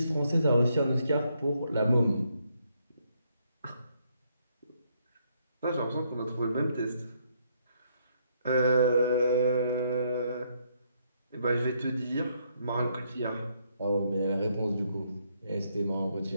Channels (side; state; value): both; inverted; correlation -0.73